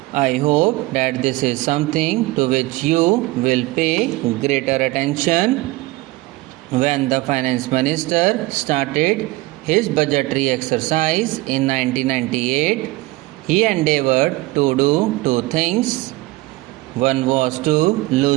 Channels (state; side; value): quieter; left; 20.3 dB